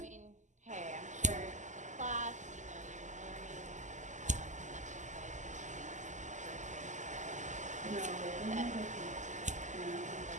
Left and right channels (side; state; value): left; late; 0.35 ms